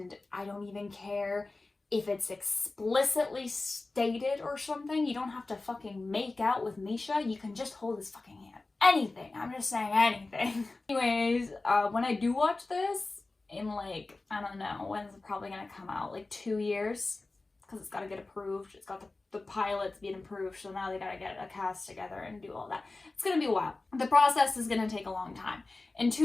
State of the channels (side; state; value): right; quieter; 3.3 dB